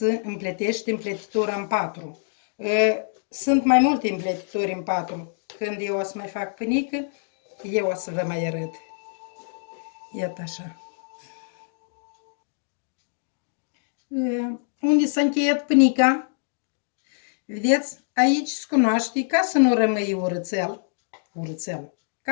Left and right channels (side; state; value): right; silent; digital silence